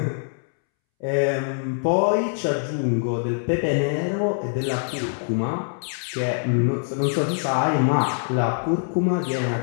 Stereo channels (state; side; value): silent; right; 63 dB below the other